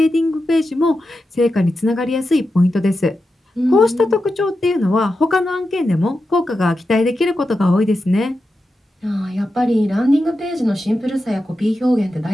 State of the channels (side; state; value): both; normal; correlation 0.90